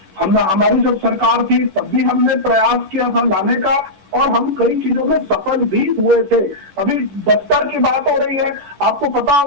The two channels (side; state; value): left; late; 11 ms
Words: हमारी जब सरकार थी तब भी हमने प्रयास किया था लाने का और हम कई चीजों में सफल भी हुए थे। अभी बस्तर की बात हो रही है, आपको पता